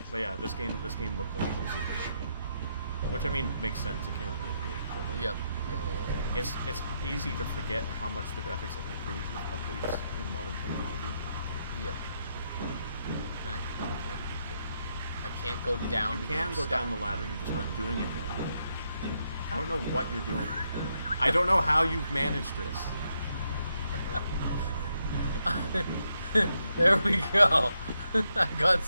But yeah, this game looked like a super game. Which I mean makes sense. It came out in '98. Like, Yep. Yeah. It's easy to forget how much the graphics have improved with updates in modern technology. Yep. I can't go down. You can go down the ladder. You're just not doing it right. I don't know what you're doing. I don't know how you've managed this. There we go. I got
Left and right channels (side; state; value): both; inverted; correlation -0.79